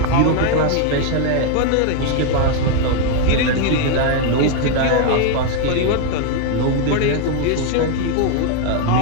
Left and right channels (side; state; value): both; different; correlation 0.01